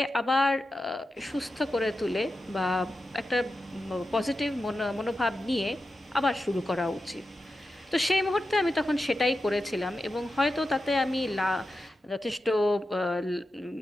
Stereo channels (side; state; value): both; normal; correlation 0.91